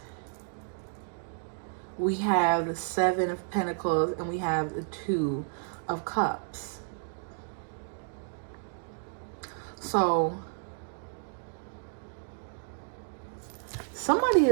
we have the Seven of Pentacles, and we have the Two of Cups. So somebody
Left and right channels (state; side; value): silent; left; 57 dB below the other